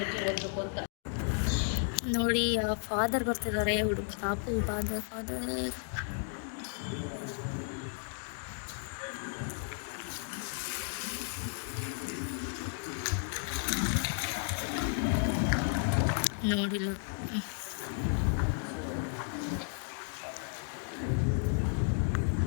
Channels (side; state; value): right; silent; 55 dB below the other